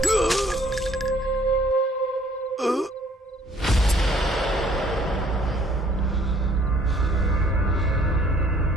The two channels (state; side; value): normal; both; correlation 0.60